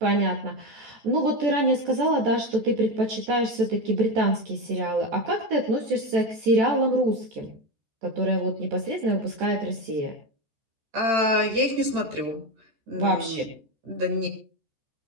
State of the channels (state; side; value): late; left; 14 ms